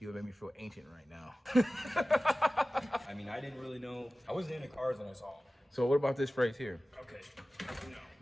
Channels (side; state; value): both; normal; correlation 0.96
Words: would make me feel ancient right now. I mean, I didn't really know. I wasn't into cars when I saw them. So what about this phrase here? Okay. No.